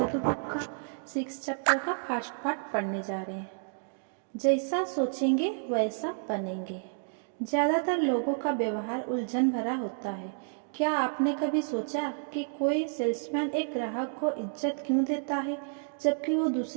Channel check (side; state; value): left; silent; digital silence